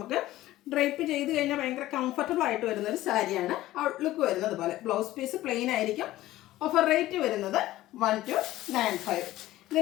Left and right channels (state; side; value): quieter; right; 15.8 dB